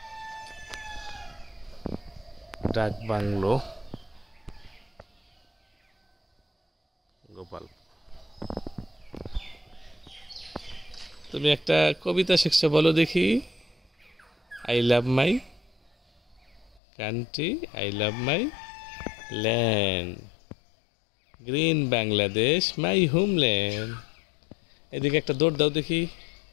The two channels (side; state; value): right; drops out; at 16.8 s